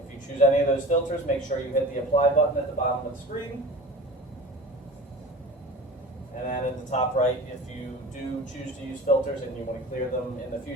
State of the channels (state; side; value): normal; both; correlation 0.37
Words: If you choose any of those filters, make sure you hit the apply button at the bottom of the screen. And then at the top right, if you do choose to use filters and you want to clear them in the